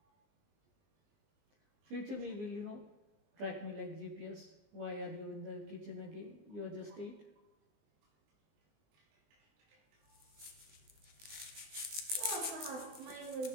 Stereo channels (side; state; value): left; late; 19 ms